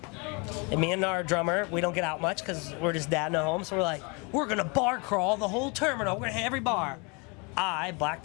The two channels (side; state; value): right; quieter; 30.9 dB